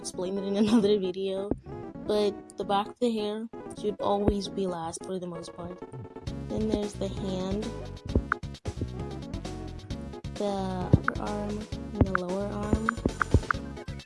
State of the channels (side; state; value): both; identical; correlation 1.00